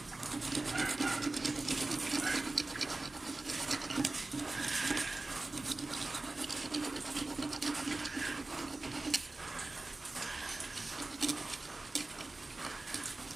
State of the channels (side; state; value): left; quieter; 3.1 dB